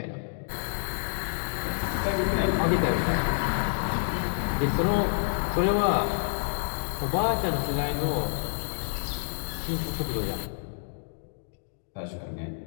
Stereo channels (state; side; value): silent; right; digital silence